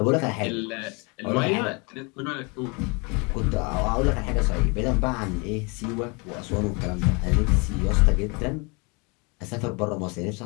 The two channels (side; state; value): right; quieter; 30.5 dB